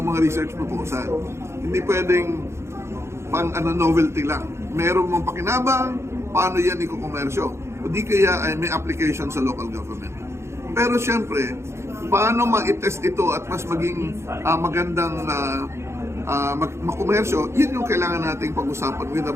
mga research proposal. Hindi pwedeng pang novelty lang. Meron mong pakinabang, paano yan ikukomersyo. O di kaya ay may application sa local government. Pero siyempre, paano ma-test ito at mas maging magandang makomersyo, yun yung kailangan nating pag-usapan with the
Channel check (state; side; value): late; left; 0.13 ms